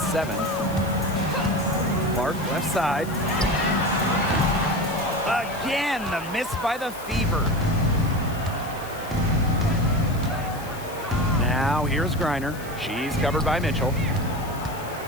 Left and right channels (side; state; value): left; noise; hiss, 17 dB below the sound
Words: 7. Clark left side. Again, the miss by the Fever. Now here's Griner. She's covered by Mitchell.